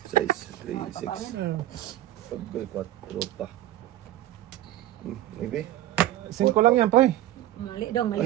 6, 3, 6. Pagkul 4 pa. Maybe. 5 lang yan, pre. Mali daw,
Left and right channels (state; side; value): quieter; left; 14.1 dB